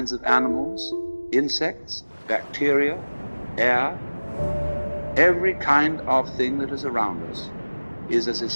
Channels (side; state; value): both; inverted; correlation -1.00